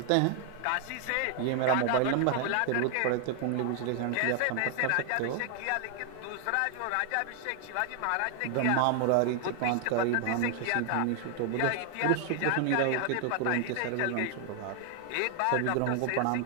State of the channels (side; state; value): both; different; correlation 0.00